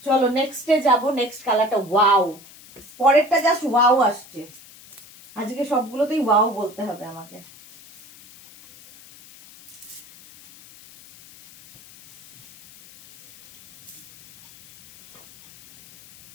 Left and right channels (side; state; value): left; noise; hiss, 22 dB below the sound